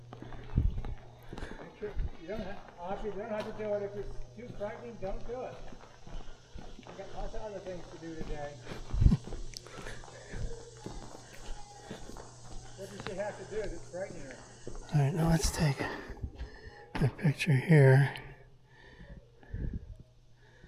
Make sure you don't have to do it if it's too frightening. Don't do it. You've got lots of other things to do today. What does she have to do that's frightening her? All right, now let's take a picture here.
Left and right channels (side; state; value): both; identical; correlation 1.00